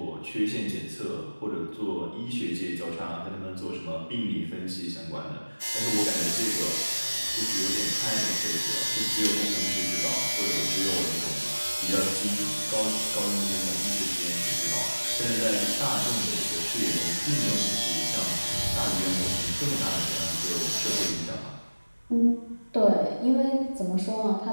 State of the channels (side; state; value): both; inverted; correlation -1.00